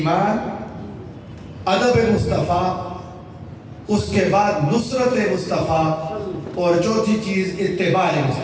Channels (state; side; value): identical; both; correlation 1.00